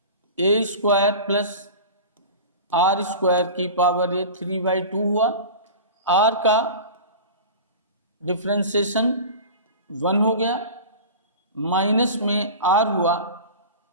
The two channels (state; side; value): inverted; both; correlation -0.34